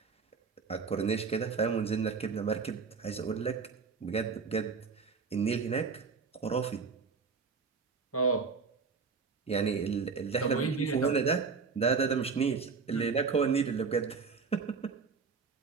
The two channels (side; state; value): left; quieter; 5.1 dB